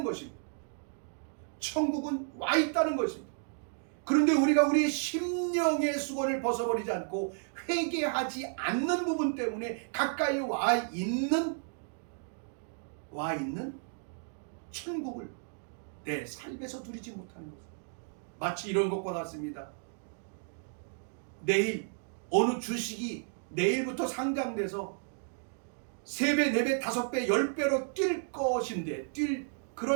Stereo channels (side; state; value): left; silent; 56 dB below the other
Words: 것입니다. 천국은 와 있다는 것입니다. 그런데 우리가 우리의 심령의 수건을 벗어버리지 않고 회개하지 않는 부분 때문에 가까이 와 있는 천국을 내 삶에서 누리지 못하는 것입니다. 마치 이런 것과 같습니다. 내일 어느 주식이 내일부터 상장돼서 3배, 4배, 5배, 10배로 뛸 것인데 뛸